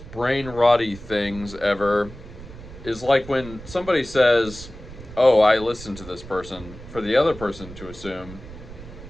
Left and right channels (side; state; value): right; noise; rumble, 15 dB below the sound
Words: brain rotty things ever is like when somebody says, oh, I listened to this person, for the other person to assume